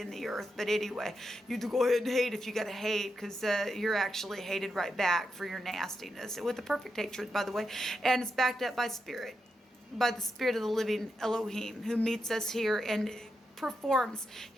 the earth. But anyway, you go ahead and hate if you got to hate, because you're actually hated right back for your nastiness, with the perfect hatred, by the way. And it's backed up by spirit, by the spirit of the living Elohim, who meets us here and performs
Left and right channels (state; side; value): normal; both; correlation 0.86